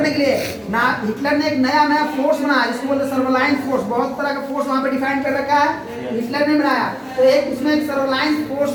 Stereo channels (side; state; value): both; identical; correlation 1.00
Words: के लिए ना हिटलर ने एक नया फोर्स बनाया जिसको बोलते हैं सर्वेलांस फोर्स। बहुत तरह का फोर्स वहां पे डिफाइन कर रखा है, हिटलर ने बनाया। तो एक उसमें एक सर्वेलांस फोर्स